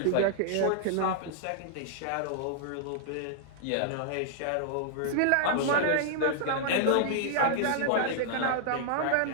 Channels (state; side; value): different; both; correlation -0.01